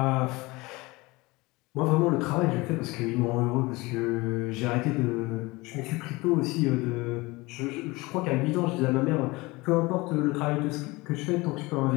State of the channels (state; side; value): quieter; right; 22.8 dB